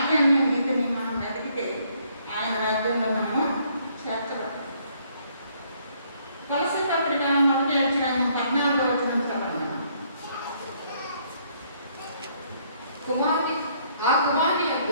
నీతిని మనం వెతికితే ఆయన రాజ్యంలో మనము చేర్చబడతాం. కొలసీ పత్రిక 1వ అధ్యాయం 14వ వచనం చదవండి. ఆ కుమారుని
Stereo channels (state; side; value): inverted; both; correlation -0.67